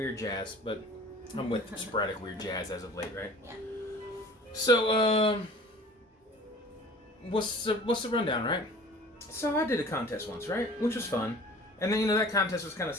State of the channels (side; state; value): both; normal; correlation 0.45